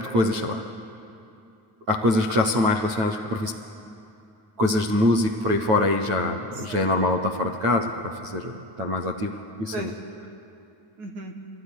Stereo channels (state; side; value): late; left; 9.1 ms